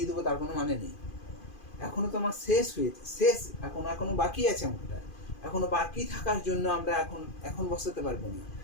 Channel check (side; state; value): right; late; 2.5 ms